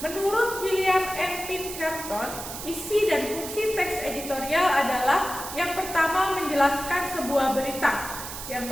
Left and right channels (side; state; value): right; noise; hiss, 9 dB below the sound